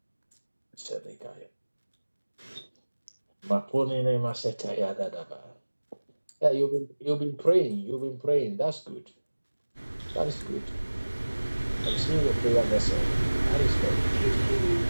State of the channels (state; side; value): inverted; both; correlation -1.00